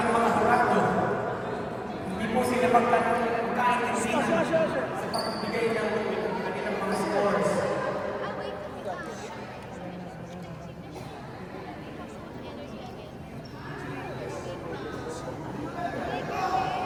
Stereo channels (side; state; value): both; identical; correlation 1.00